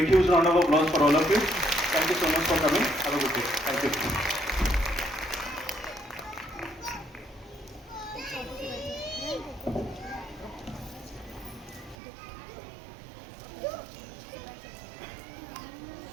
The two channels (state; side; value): drops out; left; at 12.0 s